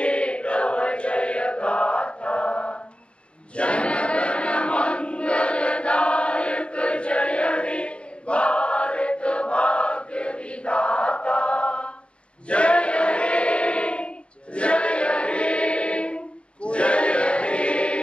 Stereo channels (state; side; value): late; right; 0.058 ms